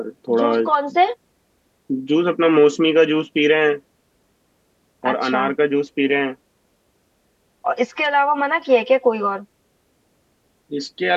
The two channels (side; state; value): both; identical; correlation 1.00